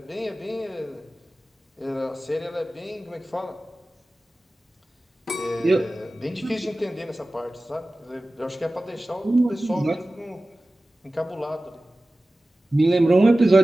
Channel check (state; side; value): normal; both; correlation 0.96